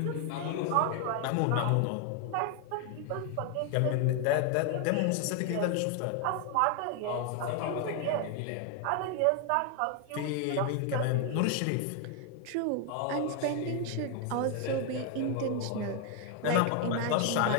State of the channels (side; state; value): both; different; correlation 0.01